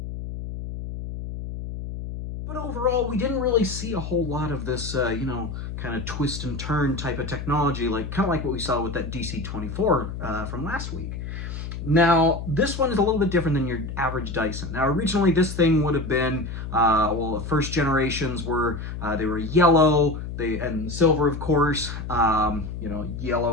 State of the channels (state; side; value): noise; left; hum, 7 dB below the sound